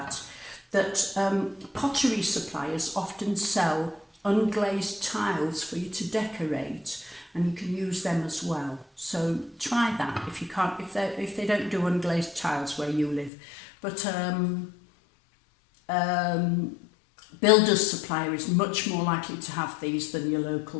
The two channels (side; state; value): right; drops out; at 13.3 s